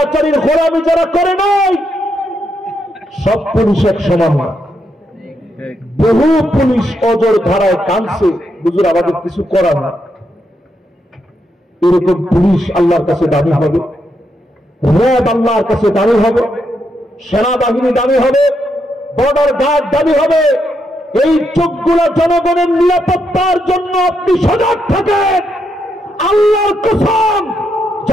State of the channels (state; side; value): normal; both; correlation 0.80